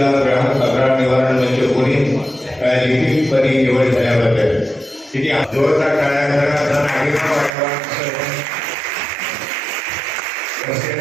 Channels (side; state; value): left; drops out; at 7.5 s